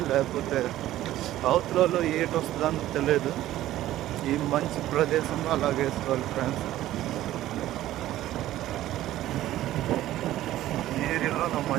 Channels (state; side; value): quieter; left; 14.2 dB